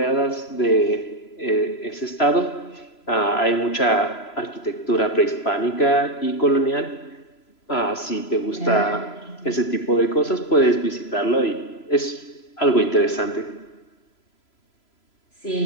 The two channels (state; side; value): late; right; 3.0 ms